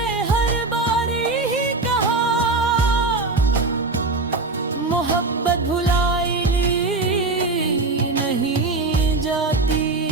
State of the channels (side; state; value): left; quieter; 3.5 dB